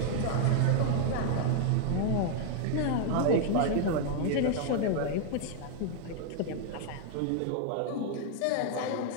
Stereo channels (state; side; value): different; both; correlation 0.00